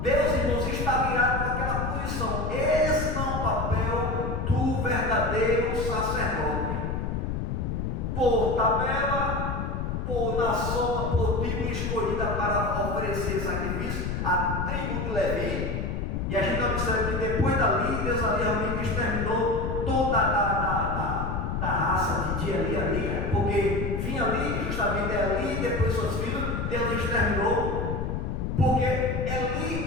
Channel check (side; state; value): left; noise; rumble, 2 dB below the sound